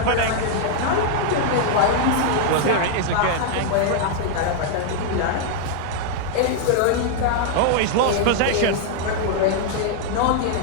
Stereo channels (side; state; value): both; different; correlation -0.01